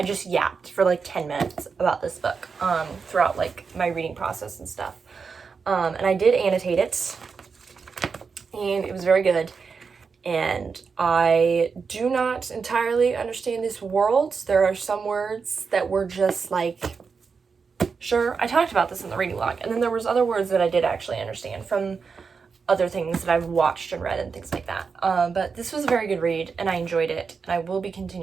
yapped for like 10 minutes about this book throughout like my reading process and stuff. And I did annotate it, and it was very good. And I do not entirely understand these worlds. There are some words that were just like, sure, I talked about this in the reading log, and then there was other words that I did actually understand from other things that I've watched and read and things like that. But this was a very good read, and I enjoyed it, and I will be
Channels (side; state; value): left; quieter; 5.3 dB